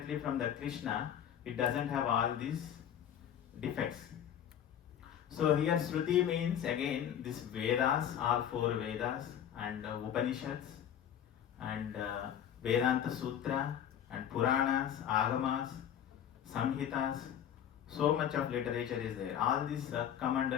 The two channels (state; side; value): quieter; right; 9.8 dB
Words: from the Krishna. It doesn't have all these defects. So here Shruti means again this Vedas, all 4 Vedas and Upanishads and Vedanta Sutra and Puranas, Agamas, Samhitas. So much of literature is there. All these come